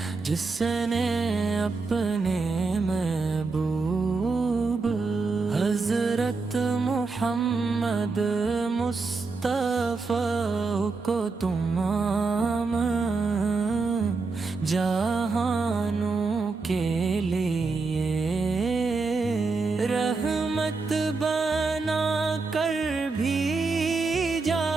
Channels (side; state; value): left; quieter; 4.1 dB